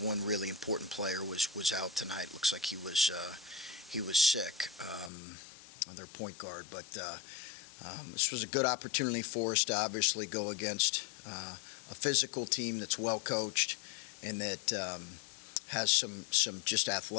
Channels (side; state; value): right; drops out; at 5.1 s